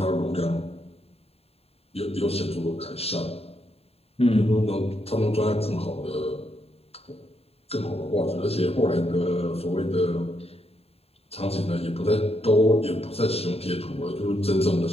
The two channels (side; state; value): right; late; 0.29 ms